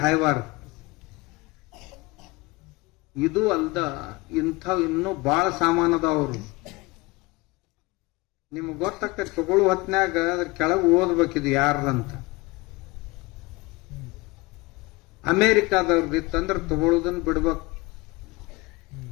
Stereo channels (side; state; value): right; quieter; 23.1 dB